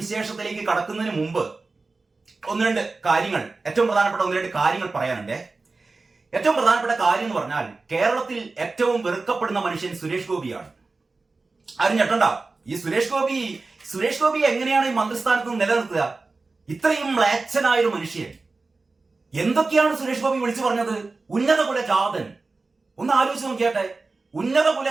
കടക്കുന്നതിന് മുമ്പ് ഏറ്റവും പ്രധാനപ്പെട്ട ഒന്ന് രണ്ട് കാര്യങ്ങൾ പറയാനുണ്ട്. ഏറ്റവും പ്രധാനപ്പെട്ട കാര്യം എന്ന് പറഞ്ഞാൽ കേരളത്തിൽ ഏറ്റവും വെറുക്കപ്പെടുന്ന മനുഷ്യൻ സുരേഷ് ഗോപിയാണ്. ആരും ഞെട്ടണ്ട. ഈ സുരേഷ് ഗോപി എങ്ങനെയാണ് ഈ മന്ത്രിസ്ഥാനത്ത് നിന്ന് നിലനിർത്തുക? ഇത്രയും മ്ലേച്ഛനായൊരു മനുഷ്യൻ. എന്തൊക്കെയാണ് സുരേഷ് ഗോപി വിളിച്ചു പറഞ്ഞത്? ഉന്നത കുലജാതൻ. ഒന്ന് ആലോചിച്ച് നോക്കിയാട്ടെ. ഉന്നത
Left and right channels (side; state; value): left; quieter; 3.7 dB